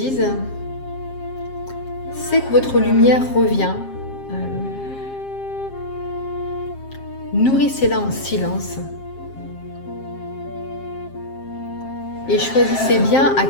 sentez que votre lumière revient. Nourrissez-la en silence. Et choisissez bien à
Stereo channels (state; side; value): late; right; 7.5 ms